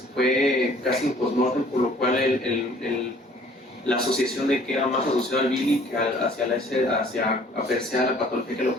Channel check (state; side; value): normal; both; correlation 0.55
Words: fue casi un postmortem, por lo cual la asociación de que era más asociado al Billy que hacia apreciar la patología que lo